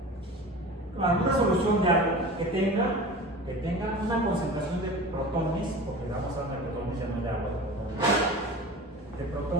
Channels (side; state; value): both; normal; correlation 0.35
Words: una solución de algo que tenga una concentración de protones, porque vamos a hablar de protones, ya no de agua, de